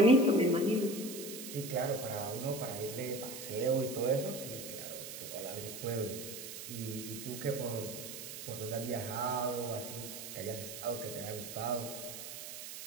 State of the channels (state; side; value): noise; right; hiss, 9 dB below the sound